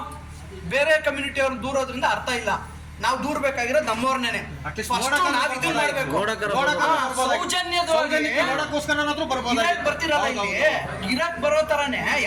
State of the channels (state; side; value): identical; both; correlation 1.00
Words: ಬೇರೆ ಕಮ್ಯುನಿಟಿ ಅವ್ರನ್ನ ದೂರೋದ್ರಿಂದ ಅರ್ಥ ಇಲ್ಲ. ನಾವು ದೂರ್ಬೇಕಾಗಿರೋದು ನಮ್ಮವ್ರನ್ನೇ. ಬರ್ತಿರಲ್ಲ ಇಲ್ಲಿ ಇರಕ್ ಬರೋ ತರಾನೇ